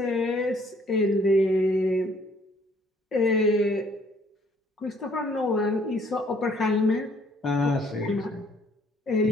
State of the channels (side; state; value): both; normal; correlation 0.62